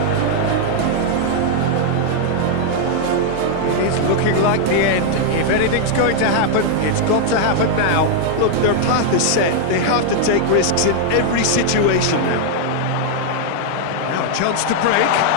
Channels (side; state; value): both; different; correlation 0.00